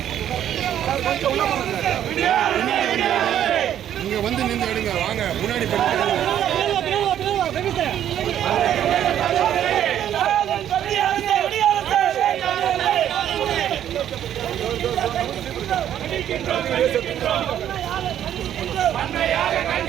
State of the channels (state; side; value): quieter; left; 10.6 dB